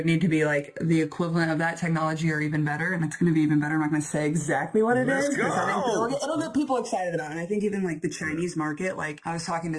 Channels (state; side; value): identical; both; correlation 1.00